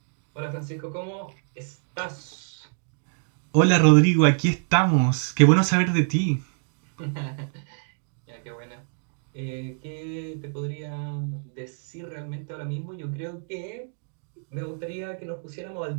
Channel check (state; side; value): silent; left; digital silence